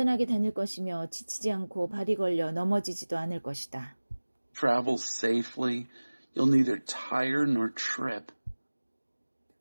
다닐 것이며 지치지 않고 발이 걸려 넘어지지도 않을 것이다. travel safely. You'll neither tire nor trip.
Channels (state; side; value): inverted; both; correlation -1.00